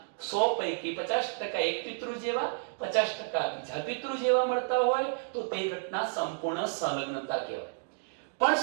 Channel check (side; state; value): left; silent; digital silence